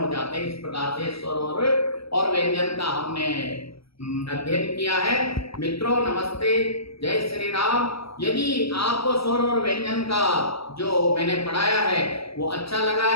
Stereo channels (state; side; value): late; right; 0.76 ms